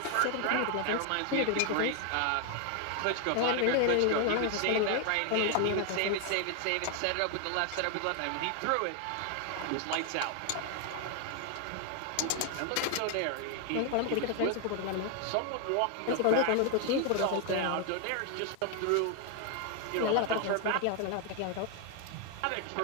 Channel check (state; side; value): different; both; correlation 0.01